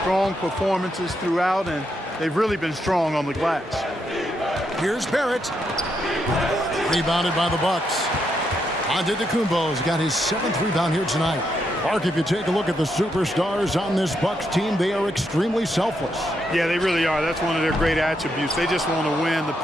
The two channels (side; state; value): both; normal; correlation 0.80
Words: strong performances throughout, and they've really been strong on the glass. Here's Barrett. Rebounded by the Bucks. Antetokounmpo's got his 7th rebound here tonight. Mark, if you take a look at the superstars on this Bucks team, they are extremely selfless. Yeah, they really are. That's one of their great attributes. They just want to win. The